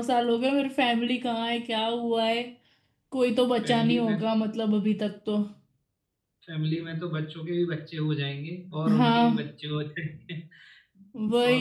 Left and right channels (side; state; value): both; identical; correlation 1.00